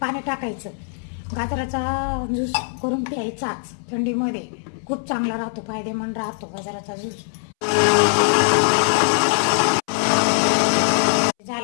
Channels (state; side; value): silent; right; 64 dB below the other